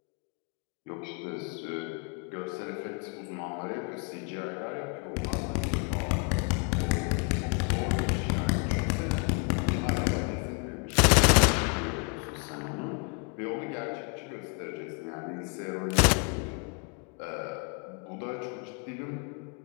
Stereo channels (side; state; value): right; quieter; 35.4 dB